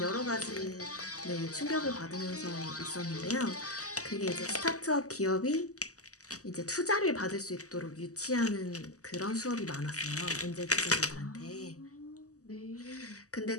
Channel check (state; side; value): late; right; 0.66 ms